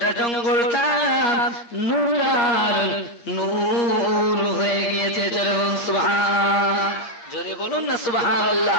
জঙ্গলটা নূর আর নূর হয়ে গিয়েছে। জোরে বলুন সুবহান, জোরে বলুন না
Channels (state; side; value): late; right; 8.6 ms